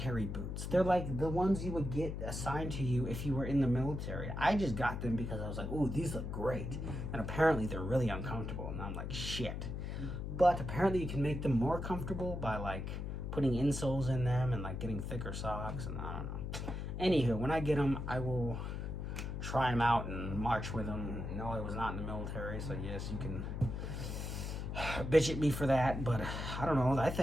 boots. They're like the ones you would get assigned to you if you were in the military. I just got them because I was like, ooh, these look great. And apparently they're really uncomfortable, and I'm like, shit. But apparently you can make them more comfortable by like putting insoles in them and like getting thicker socks, and I don't know. Anywho, when I get them, I will try them out and march with them. No, I was not in the military, so yes, you can bitch at me for that, but I don't know. I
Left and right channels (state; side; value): noise; left; hum, 4 dB below the sound